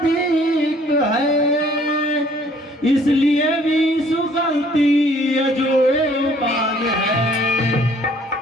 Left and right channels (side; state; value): both; normal; correlation 0.59